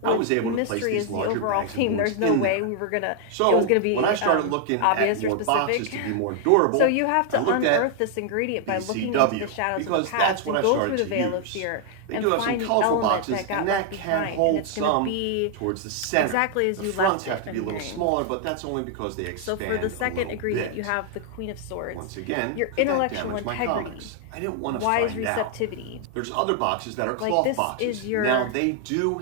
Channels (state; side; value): different; both; correlation 0.00